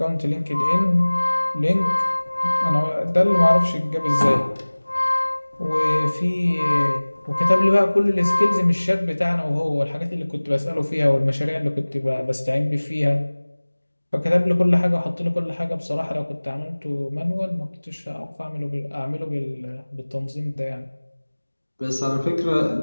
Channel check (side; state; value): both; inverted; correlation -1.00